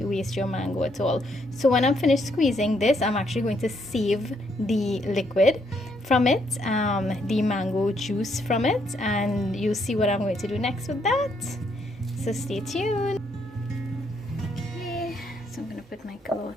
waste your mango at all. So when I'm finished squeezing this, I'm actually going to save the liquid from it, the mango juice from it, and you'll see what I'm going to do next with that. So stay tuned. Okay, so I'm going to put my cloth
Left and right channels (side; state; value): both; normal; correlation 0.73